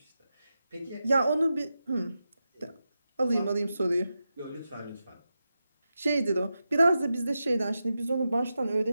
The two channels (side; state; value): both; inverted; correlation -0.90